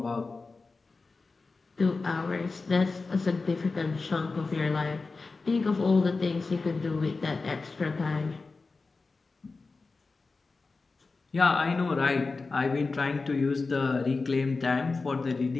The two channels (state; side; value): quieter; right; 3.9 dB